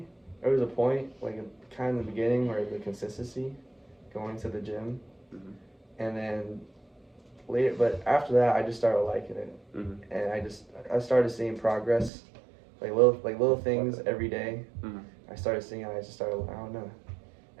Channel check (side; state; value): left; drops out; at 12.1 s